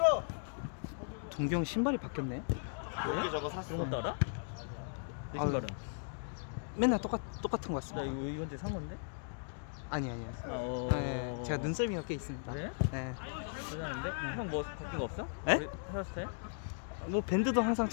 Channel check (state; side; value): silent; right; digital silence